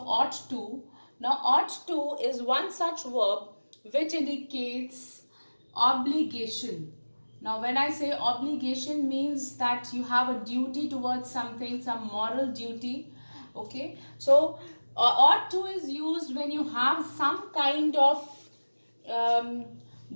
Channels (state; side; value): inverted; both; correlation -1.00